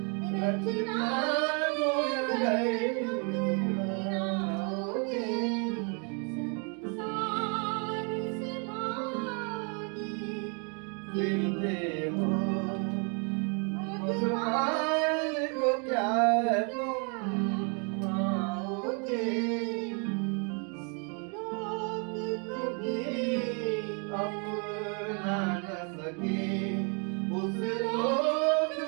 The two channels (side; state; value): left; quieter; 37.0 dB